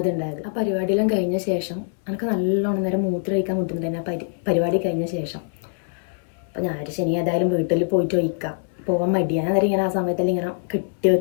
അത് ഉണ്ടായത്. ആ പരിപാടിയെല്ലാം കഴിഞ്ഞ ശേഷം എനിക്ക് നല്ലോണം നേരം മൂത്രമൊഴിക്കാൻ ബുദ്ധിമുട്ടുണ്ടായിരുന്നു. ആ പരിപാടി കഴിഞ്ഞ ശേഷം. അപ്പോൾ ഞാൻ ശനി ഏതായാലും വീട്ടിൽ പോയിട്ട് ഒഴിക്കാം, പോകാൻ മടിയാണ്. അന്നേരം ഇങ്ങനെ ആ സമയത്തെല്ലാം ഇങ്ങനെ കെട്ടി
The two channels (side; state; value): right; silent; 63 dB below the other